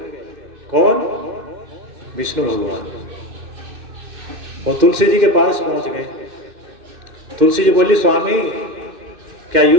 कौन? विष्णु भगवान। और तुलसी जी के पास पहुंच गए। तुलसी जी बोली स्वामी क्या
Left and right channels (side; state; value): left; late; 2.6 ms